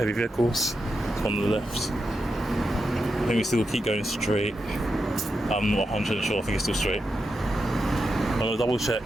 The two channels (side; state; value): both; normal; correlation 0.87